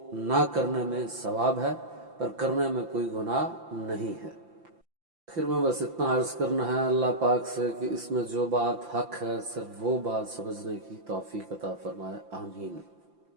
نہ کرنے میں ثواب ہے، پر کرنے میں کوئی گناہ نہیں ہے۔ آخر میں بس اتنا عرض کرنا ہے اللہ پاک سے کہ اس میں جو بات حق ہے صرف وہ بات سمجھنے کی توفیق عطا فرمائے، آمین۔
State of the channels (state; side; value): late; left; 5.8 ms